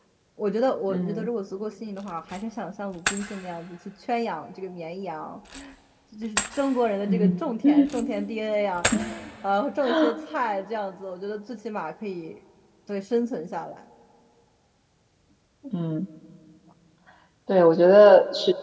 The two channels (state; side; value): identical; both; correlation 1.00